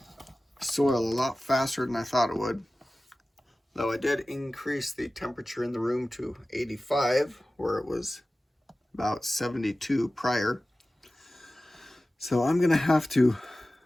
soil a lot faster than I thought it would. Though I did increase the temperature in the room to 85, where it was about 72 prior. So I'm gonna have to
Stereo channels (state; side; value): normal; both; correlation 0.96